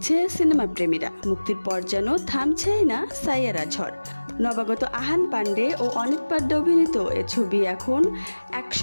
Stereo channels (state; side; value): inverted; both; correlation -1.00